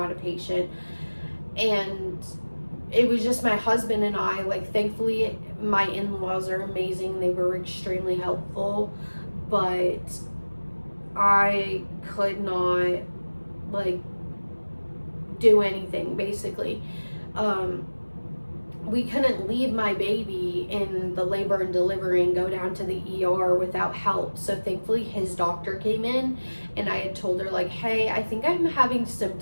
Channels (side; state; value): both; inverted; correlation -1.00